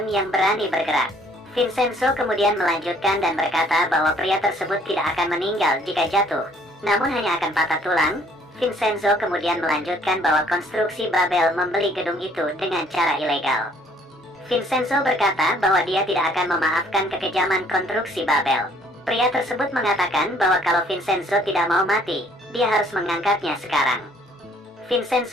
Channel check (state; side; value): normal; both; correlation 0.61